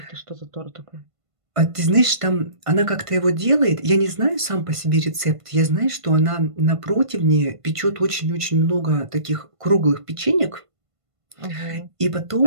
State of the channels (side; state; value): left; late; 1.5 ms